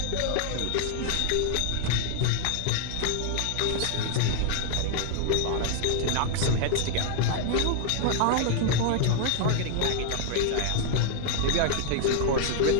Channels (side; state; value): both; different; correlation 0.00